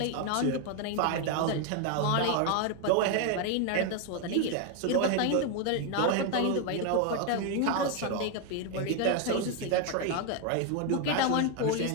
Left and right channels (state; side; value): different; both; correlation 0.01